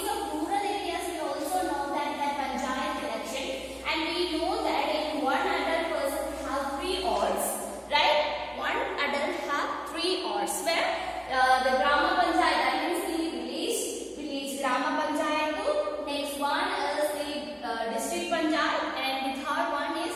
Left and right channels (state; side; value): identical; both; correlation 1.00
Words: of rural areas we also know that panchayat election, and we know that in one adult person have 3 wards, right? One adult have 3 wards where the Grama Panchayat, that means the village Grama Panchayat, next one is the district Panchayat, and the third one is